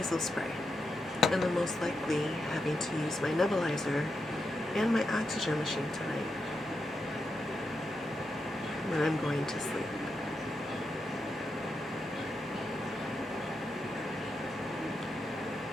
spray. And then most likely having to use my nebulizer and my oxygen machine tonight when I'm going to sleep.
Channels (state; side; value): normal; both; correlation 0.86